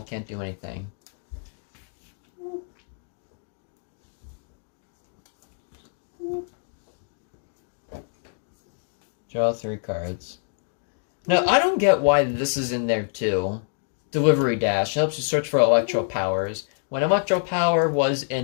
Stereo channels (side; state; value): right; silent; digital silence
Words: can't do anything. Draw 3 cards. Now, I don't get why this is in there too. Delivery Dash helps you search for Electro Powers when Electro Power was